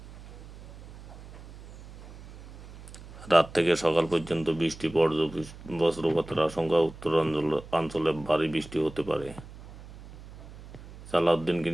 রাত থেকে সকাল পর্যন্ত বৃষ্টি, বজ্রপাতের আশঙ্কা। উত্তরাঞ্চলে ভারী বৃষ্টি হতে পারে। সালাউদ্দিনকে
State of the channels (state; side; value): noise; right; hum, 16 dB below the sound